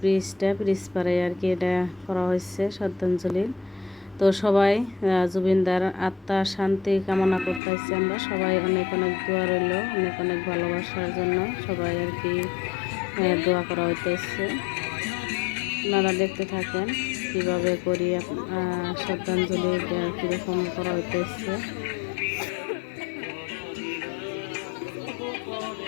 পারে আর কি এটা করা হয়েছে শ্রদ্ধাঞ্জলি। তো সবাই জুবিনদার আত্মার শান্তি কামনা করতেছি। আমরা সবাই অনেক অনেক দোয়া রইল, অনেক অনেক ভালোবাসার জন্য সবাই আর কি দোয়া করা হইতেছে। আপনারা দেখতে থাকেন কিভাবে করি শ্রদ্ধাঞ্জলি কীরকম করা হইতেছে।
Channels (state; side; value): drops out; right; at 7.6 s